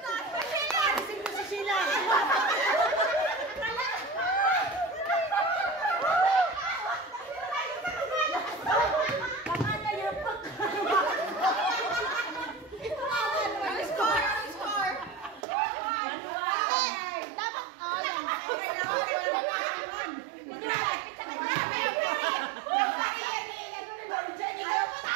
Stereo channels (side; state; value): left; drops out; at 15.5 s